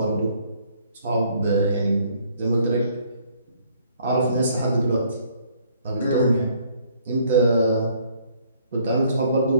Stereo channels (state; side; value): inverted; both; correlation -0.63